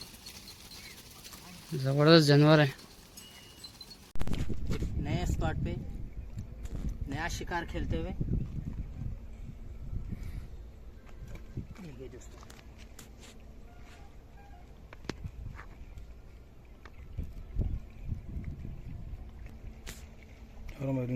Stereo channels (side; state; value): both; identical; correlation 1.00